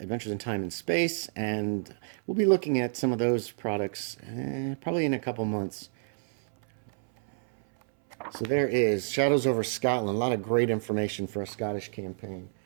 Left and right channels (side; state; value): left; silent; 59 dB below the other